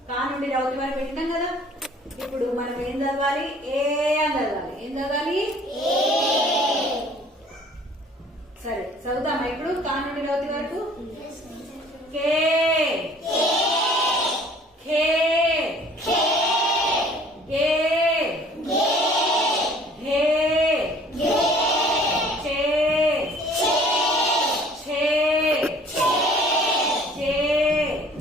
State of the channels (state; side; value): normal; both; correlation 0.53